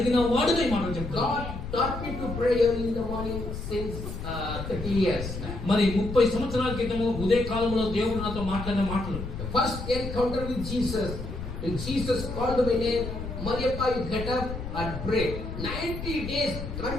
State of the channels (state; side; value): noise; left; rumble, 7 dB below the sound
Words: వాడుగా ఈ మాటలు చెప్తాను. God taught me to pray early in the morning since 30 years. మరి 30 సంవత్సరాల క్రితము ఉదయ కాలంలో దేవుడు నాతో మాట్లాడిన మాటలు. The first encounter with Jesus, when Jesus called my name, Mariappa, you get up and pray. 90 days,